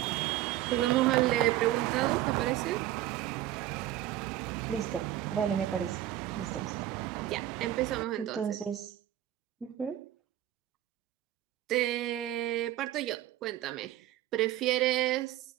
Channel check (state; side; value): quieter; left; 13.5 dB